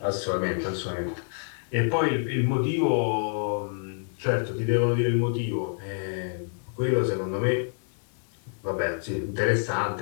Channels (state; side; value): silent; right; digital silence